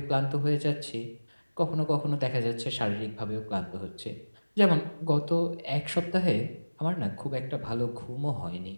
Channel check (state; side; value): inverted; both; correlation -1.00